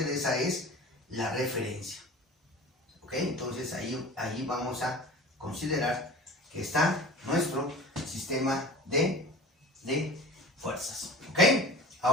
es la referencia, ¿ok? Entonces ahí vamos a considerar que está nuestro sistema de fuerzas, ¿ok?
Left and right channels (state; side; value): normal; both; correlation 0.39